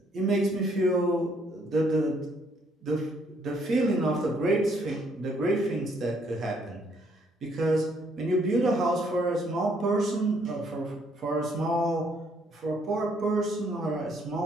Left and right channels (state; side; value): normal; both; correlation 0.68